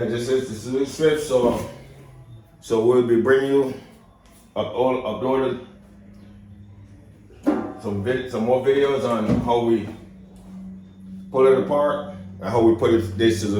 this is the Suzuki Swift. So we'll be bringing you uploaded some more videos on how we pull it apart, I hope we put this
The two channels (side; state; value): both; identical; correlation 1.00